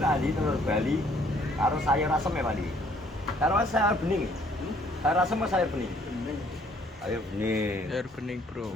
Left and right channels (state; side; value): normal; both; correlation 0.62